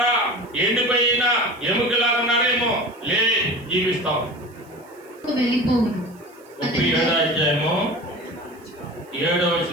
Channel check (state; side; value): noise; right; hiss, 29 dB below the sound